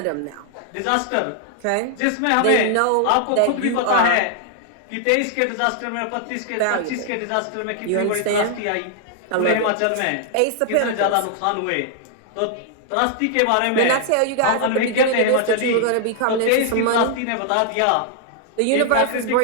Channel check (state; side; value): different; both; correlation 0.00